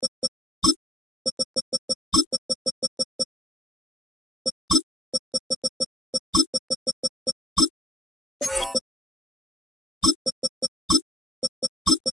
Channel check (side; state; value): both; normal; correlation 0.71